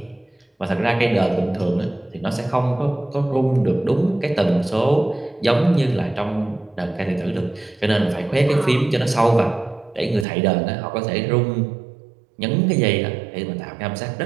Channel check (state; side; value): drops out; left; at 10.2 s